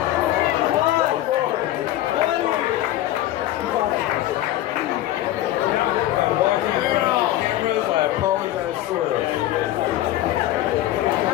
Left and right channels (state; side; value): quieter; right; 14.3 dB